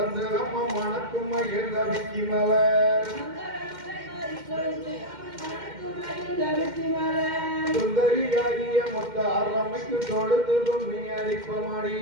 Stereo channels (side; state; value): left; late; 2.1 ms